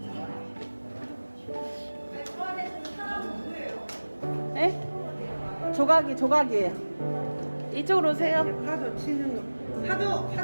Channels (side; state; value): both; inverted; correlation -1.00